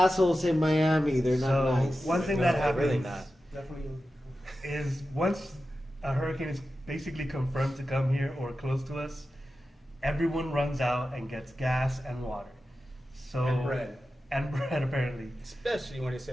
in Miami. They're not So nice. one thing that happens really not. Definitely. is once a hurricane is basically confirmed to come here or close to us, everyone runs out and gets gas and water. So And bread. And bread, apparently. Especially when it's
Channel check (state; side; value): normal; both; correlation 0.92